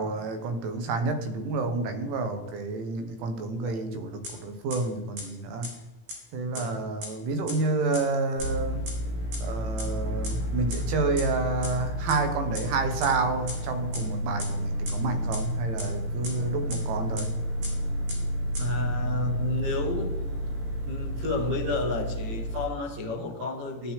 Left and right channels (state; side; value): late; left; 18 ms